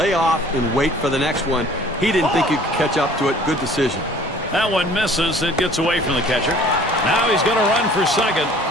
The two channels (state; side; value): normal; both; correlation 0.52